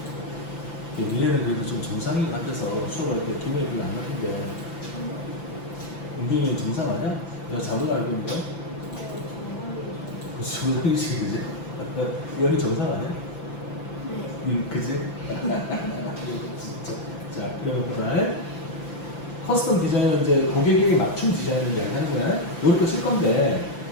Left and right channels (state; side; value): late; right; 5.9 ms